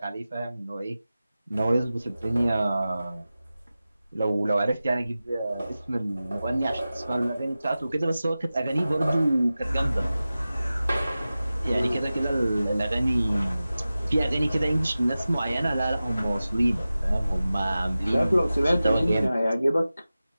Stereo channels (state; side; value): inverted; both; correlation -0.95